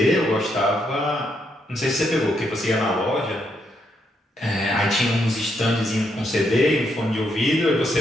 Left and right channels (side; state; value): both; normal; correlation 0.77